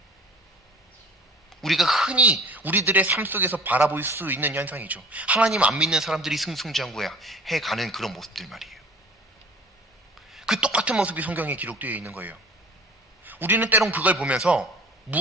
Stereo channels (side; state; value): both; normal; correlation 0.44